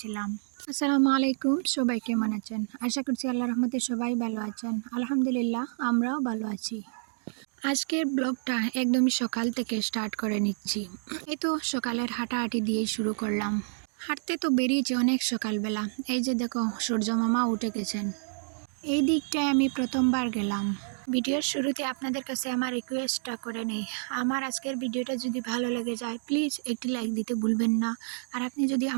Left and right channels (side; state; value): left; silent; digital silence